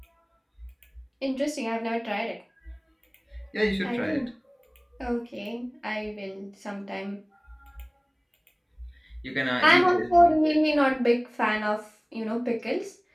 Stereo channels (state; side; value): identical; both; correlation 1.00